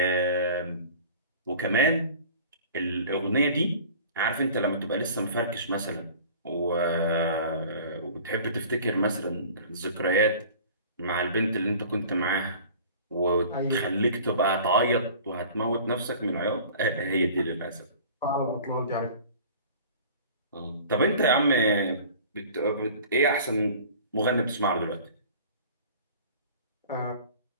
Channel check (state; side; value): inverted; both; correlation -0.44